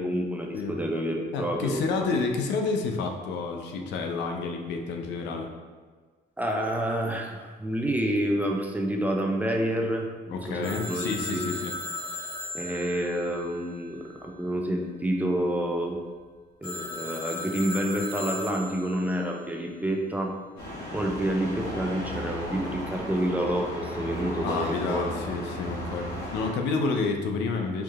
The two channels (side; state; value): both; normal; correlation 0.64